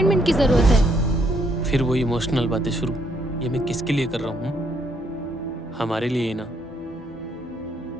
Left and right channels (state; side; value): normal; both; correlation 0.71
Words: की जरूरत है। फिर वही इमोशनल बातें शुरू। ये मैं किसके लिए कर रहा हूँ? हमारे लिए ही ना,